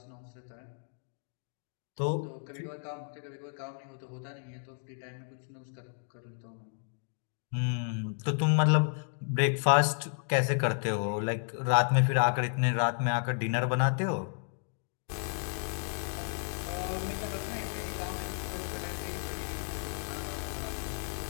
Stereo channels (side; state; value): right; silent; 56 dB below the other